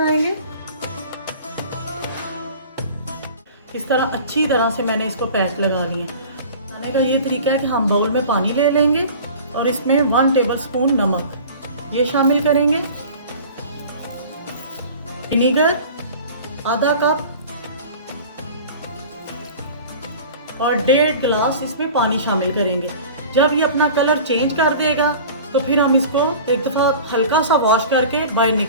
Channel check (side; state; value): both; inverted; correlation -0.41